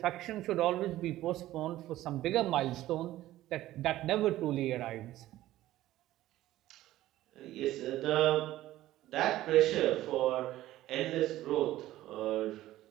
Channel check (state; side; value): quieter; left; 15.0 dB